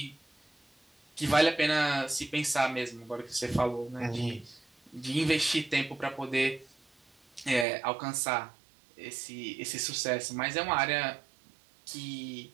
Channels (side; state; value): left; drops out; at 7.7 s